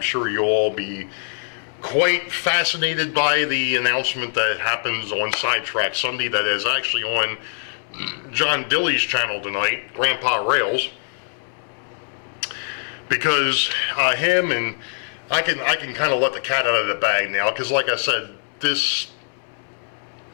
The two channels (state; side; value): silent; right; 64 dB below the other